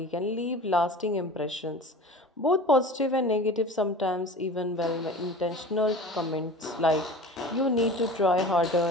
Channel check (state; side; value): normal; both; correlation 0.37